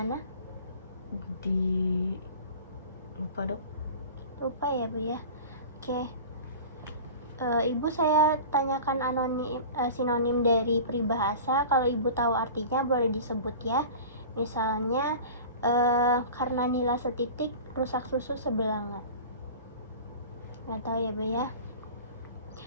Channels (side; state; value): both; inverted; correlation -0.38